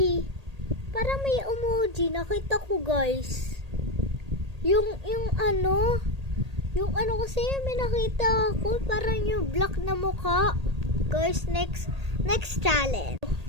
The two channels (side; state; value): left; late; 1.8 ms